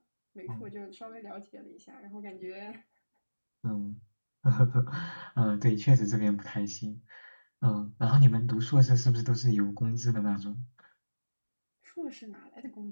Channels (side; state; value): both; inverted; correlation -1.00